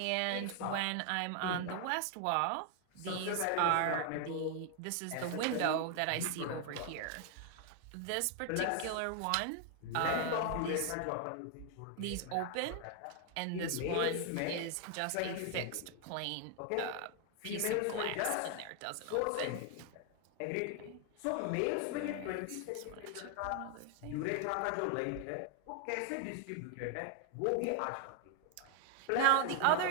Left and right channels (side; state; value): both; different; correlation 0.00